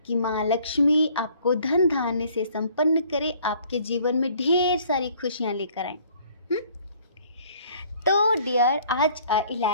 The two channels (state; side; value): inverted; both; correlation -0.58